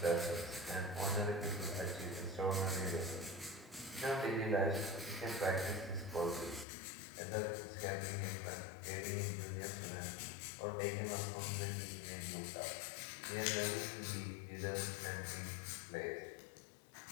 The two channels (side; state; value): right; drops out; at 6.7 s